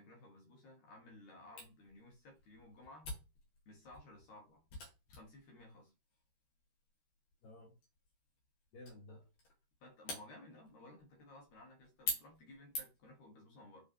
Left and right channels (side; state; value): right; late; 13 ms